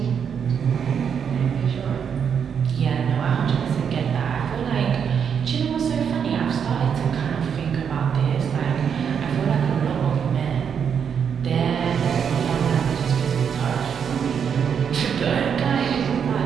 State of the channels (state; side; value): quieter; left; 7.4 dB